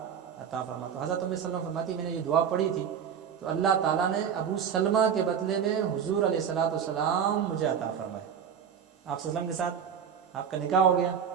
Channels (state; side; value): quieter; left; 7.9 dB